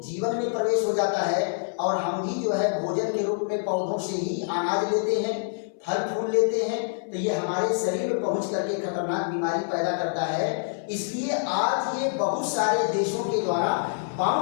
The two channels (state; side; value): silent; right; 61 dB below the other